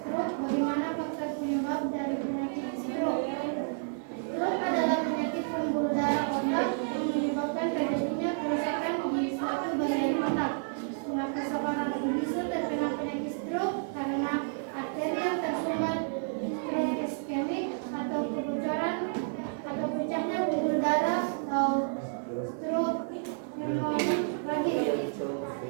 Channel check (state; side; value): silent; left; 57 dB below the other